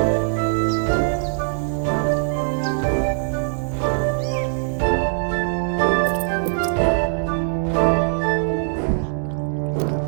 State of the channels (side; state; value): left; silent; digital silence